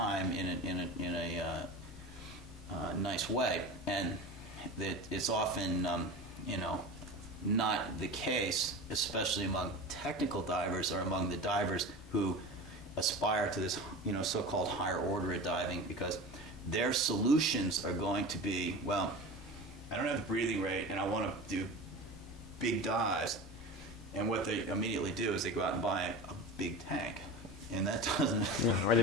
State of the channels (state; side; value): normal; both; correlation 0.31